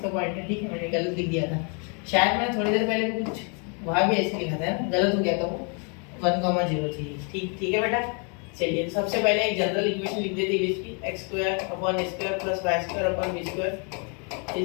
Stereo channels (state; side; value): quieter; right; 37.3 dB